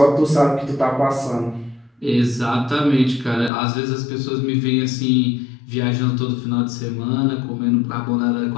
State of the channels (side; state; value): right; drops out; at 3.5 s